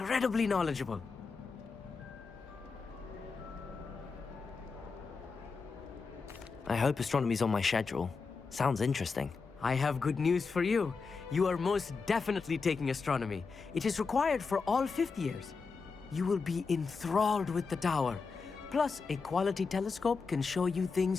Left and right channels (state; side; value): quieter; right; 4.8 dB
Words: knowledgeable. I hope astronomy's on my schedule. Sounds interesting. I have good news for you. You are most definitely taking astronomy. It is required for all fifth years. You will be enthralled with the tower. Plus, a quality telescope can show you